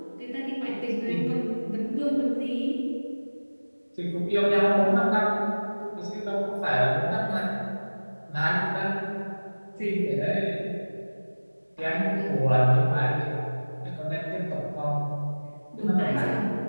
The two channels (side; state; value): both; inverted; correlation -1.00